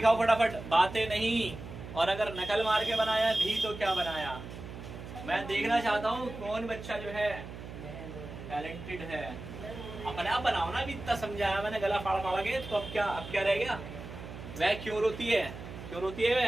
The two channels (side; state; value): right; noise; hum, 11 dB below the sound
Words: फटाफट, बातें नहीं। और अगर नकल मार के बनाया भी तो क्या बनाया, मैं देखना चाहता हूँ कौन बच्चा जो है टैलेंटेड है। अपने आप बनाओ ना, भी इतना समझाया मैंने गला फाड़ फाड़ के, तो अब क्या रह गया। वह क्यों रोती है, क्यों रोती है